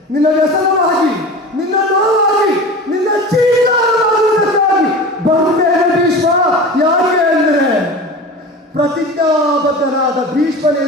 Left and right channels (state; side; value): normal; both; correlation 0.33